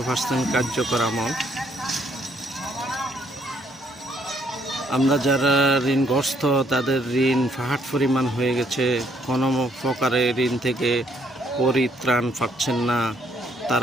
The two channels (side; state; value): both; normal; correlation 0.68